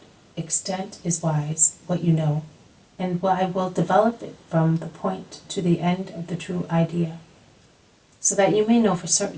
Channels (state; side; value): identical; both; correlation 1.00